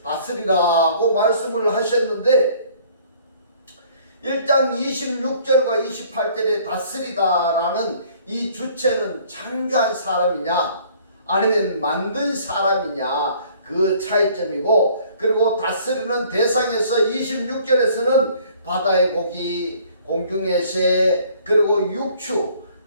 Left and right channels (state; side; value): inverted; both; correlation -0.56